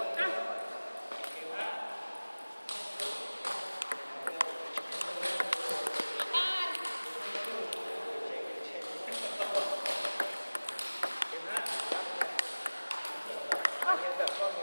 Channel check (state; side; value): inverted; both; correlation -1.00